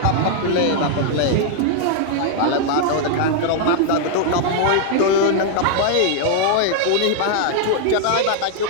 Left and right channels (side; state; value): both; different; correlation 0.00